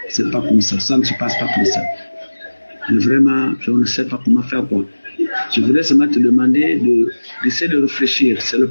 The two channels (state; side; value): inverted; both; correlation -1.00